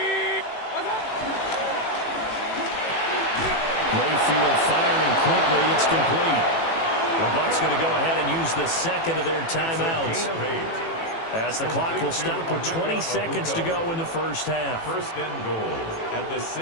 Mayfield firing quickly. It's complete. The Bucs going to go ahead and use the second of their timeouts, as the clock will stop with 20 seconds to go in the first half. First and goal at the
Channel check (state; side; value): late; right; 18 ms